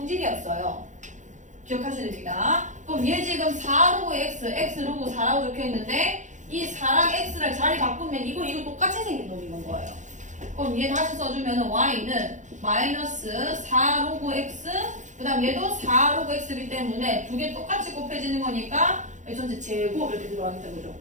기억하셔야 됩니다. 그럼 얘 지금 4 로그 x, x 로그 4라고 적혀 있는데 이 4랑 x를 자리 바꾸면 이거 똑같이 생긴 놈인 거예요. 그럼 얘 다시 써주면 y는 마이너스 4 로그 x 그 다음 얘도 4 로그 x이기 때문에 두 개 똑같이 곱해지는 거니까 전체 제곱 이렇게 들어가겠다 그죠?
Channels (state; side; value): late; left; 0.35 ms